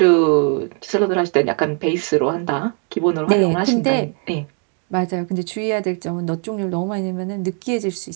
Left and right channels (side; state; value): left; quieter; 39.8 dB